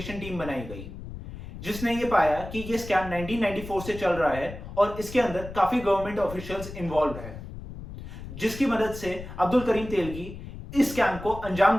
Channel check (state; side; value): noise; left; rumble, 11 dB below the sound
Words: टीम बनाई गई जिसने ये पाया कि ये स्कैम 1994 से चल रहा है और इसके अंदर काफी गवर्नमेंट ऑफिशियल्स इन्वॉल्व है, जिसकी मदद से अब्दुल करीम तेलगी इस स्कैम को अंजाम